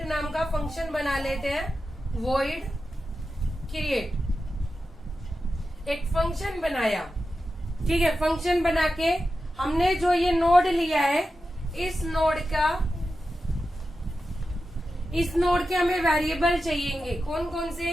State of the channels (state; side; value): normal; both; correlation 0.91